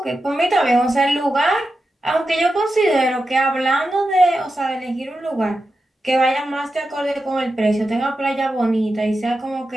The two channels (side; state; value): both; normal; correlation 0.90